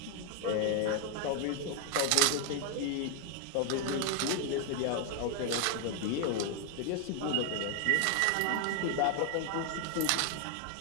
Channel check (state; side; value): different; both; correlation 0.01